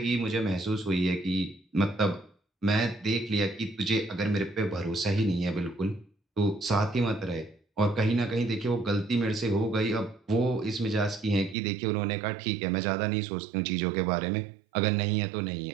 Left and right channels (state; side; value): drops out; left; at 11.6 s